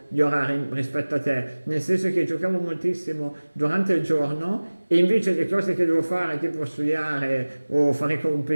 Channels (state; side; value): inverted; both; correlation -1.00